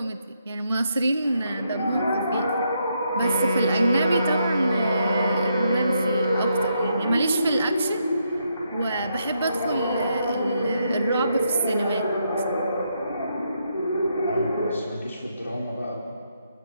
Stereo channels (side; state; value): both; inverted; correlation -0.78